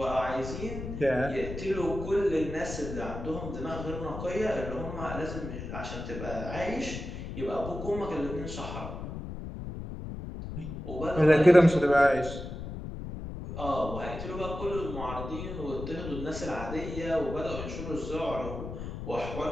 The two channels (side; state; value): left; noise; rumble, 8 dB below the sound